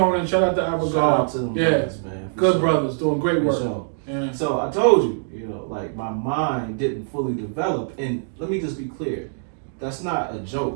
Shout out to Abigail. Shout out to them brothers, man. Good brothers doing great work. Sure. Yeah. So I told you, like my mind didn't fully develop. And let me just be clear, that's not a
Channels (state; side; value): silent; left; digital silence